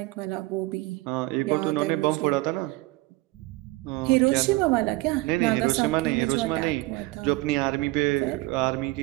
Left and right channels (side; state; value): left; quieter; 20.9 dB